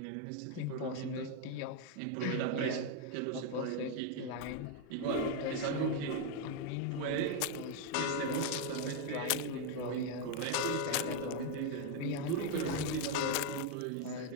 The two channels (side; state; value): both; different; correlation 0.01